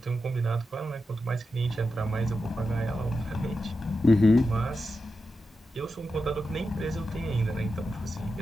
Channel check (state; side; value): normal; both; correlation 0.90